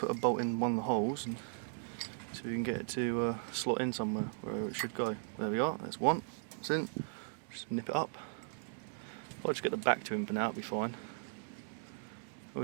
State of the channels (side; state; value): left; silent; digital silence